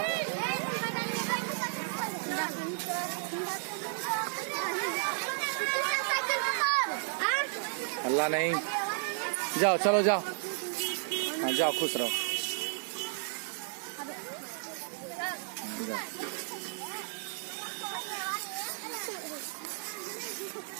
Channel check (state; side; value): silent; left; digital silence